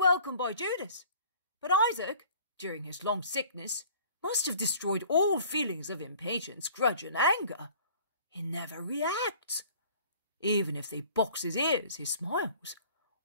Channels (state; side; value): inverted; both; correlation -0.50